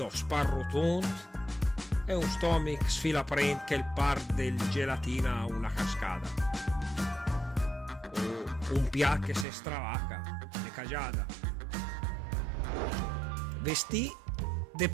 sparrotont e un stomach sfilaprent che il par del gelatina a una cascata. O un pià che se stravaca, de cagiada. Vestì de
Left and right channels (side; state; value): left; drops out; at 9.5 s